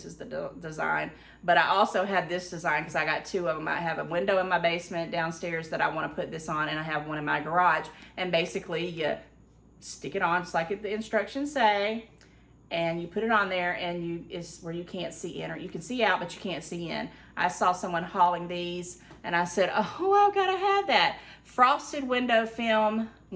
is the design. But I also have this design because I got two of them. I have a window in my basement downstairs that I want to put this on, and I have one in my garage. And basically, you stick it on just like the instructions say, and you put it on there, and it's where you can't see in, or you can see out, but you can't see in. I saw someone hauling these, and I said, oh, I've got to have that. Frosted window film,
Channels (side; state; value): both; identical; correlation 1.00